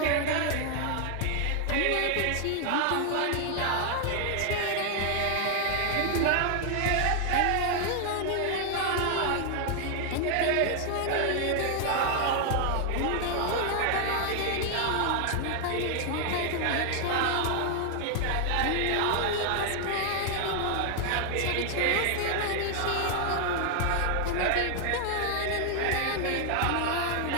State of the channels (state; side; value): different; both; correlation 0.00